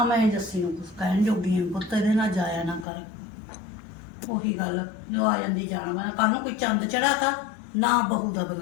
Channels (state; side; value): drops out; right; at 2.9 s